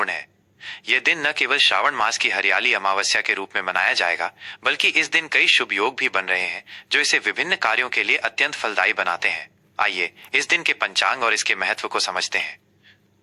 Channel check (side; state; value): both; identical; correlation 1.00